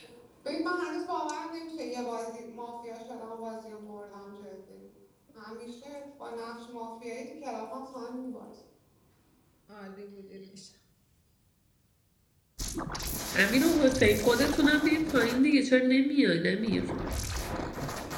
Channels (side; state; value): both; identical; correlation 1.00